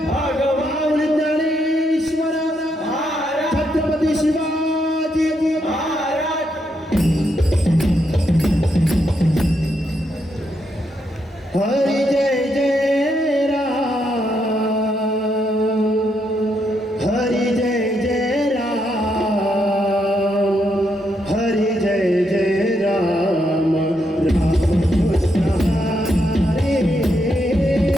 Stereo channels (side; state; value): both; normal; correlation 0.79